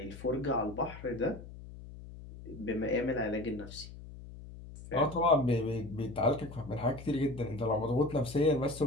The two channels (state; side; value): noise; left; hum, 14 dB below the sound